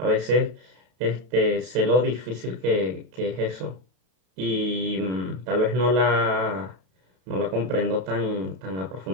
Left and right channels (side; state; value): left; late; 32 ms